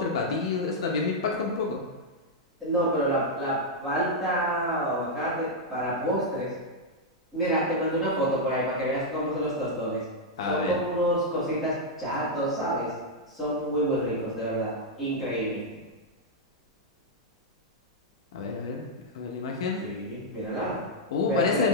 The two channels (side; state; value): both; normal; correlation -0.04